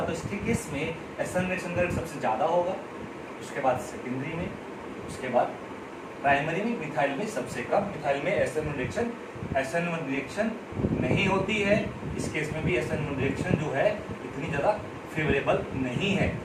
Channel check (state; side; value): identical; both; correlation 1.00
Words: तो इसके केस में SN रिएक्शन का रेट सबसे ज्यादा होगा, उसके बाद सेकेंडरी में, उसके बाद प्राइमरी में, मिथाइल में सबसे कम। मिथाइल में SN1 रिएक्शन नहीं होती है। इस केस में भी SN1 रिएक्शन जो है इतनी ज़्यादा फेवरेबल नहीं है,